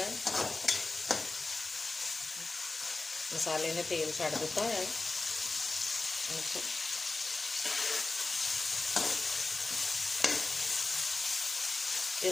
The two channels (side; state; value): right; quieter; 3.4 dB